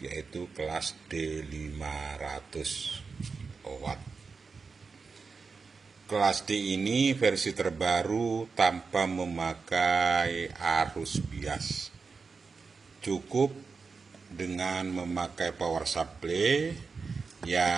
yaitu kelas D500 watt. Kelas D ini versi terbaru tanpa memakai arus bias. Cukup dengan memakai power supply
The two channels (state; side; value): quieter; left; 4.8 dB